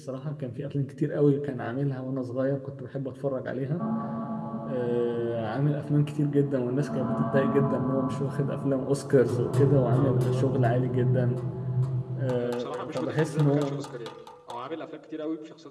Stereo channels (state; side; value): identical; both; correlation 1.00